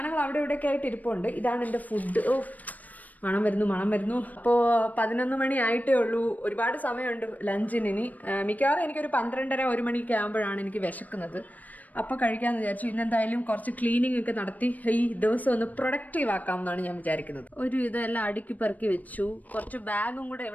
അവിടെ ഇവിടെയൊക്കെ ആയിട്ട് ഇരിപ്പുണ്ട്. ഇതാണ് എൻ്റെ ഫുഡ്. മണം വരുന്നു. അപ്പോൾ 11 മണി ആയിട്ടേ ഉള്ളൂ. ഒരുപാട് സമയമുണ്ട് ലഞ്ചിന്. ഇനി മിക്കവാറും എനിക്കൊരു 12:30-1 മണിയൊക്കെ ആകുമ്പോഴാണ് എനിക്ക് വിശക്കുന്നത്. അപ്പോൾ കഴിക്കാമെന്ന് വിചാരിച്ചു. ഇന്നെന്തായാലും കുറച്ച് ക്ലീനിങ് ഒക്കെ നടത്തി ഈ ദിവസം ഒന്ന് പ്രൊഡക്റ്റീവ് ആക്കാം എന്നാണ് ഞാൻ വിചാരിക്കുന്നത്. ഒരു ഇതെല്ലാം അടുക്കി പെറുക്കി വെച്ചു. കുറച്ച് ബാഗും കൂടെ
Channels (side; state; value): right; late; 0.077 ms